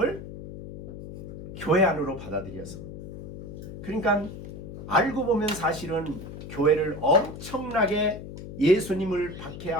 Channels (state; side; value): noise; left; hum, 11 dB below the sound